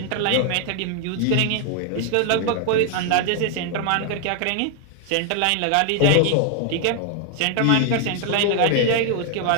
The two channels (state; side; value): different; both; correlation 0.00